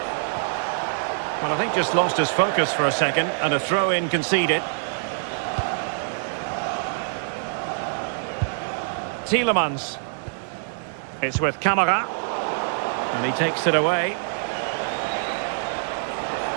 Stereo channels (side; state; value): left; silent; 62 dB below the other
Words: Well, I think just lost his focus for a second, and a throw-in conceded. Tielemans. It's with Camara. And he takes it away.